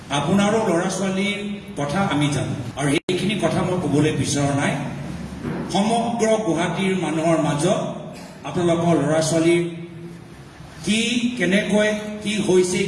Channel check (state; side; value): identical; both; correlation 1.00